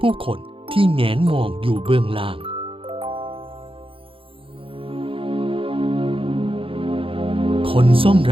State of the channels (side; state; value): left; late; 0.26 ms